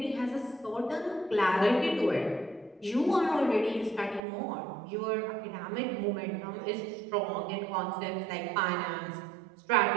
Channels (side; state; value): left; drops out; at 4.2 s